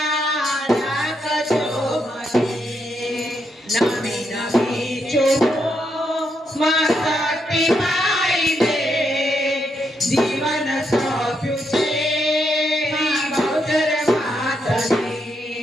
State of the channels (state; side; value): normal; both; correlation 0.80